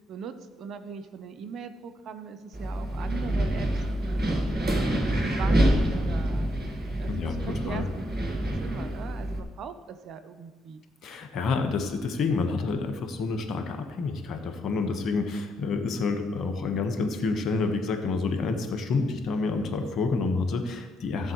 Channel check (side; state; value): both; normal; correlation 0.78